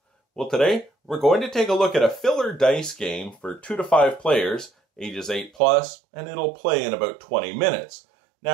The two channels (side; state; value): left; drops out; at 5.6 s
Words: Well, today we're going to take a look at a filler dice game for 2 to 5 players, ages 8+, and it'll play in about 20 minutes.